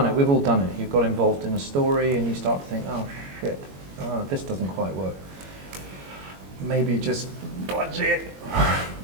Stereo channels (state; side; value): late; left; 21 ms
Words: it. We've all done it. You've got involved in a story and you start to think, oh, shit, this doesn't quite work. Maybe just dodge it.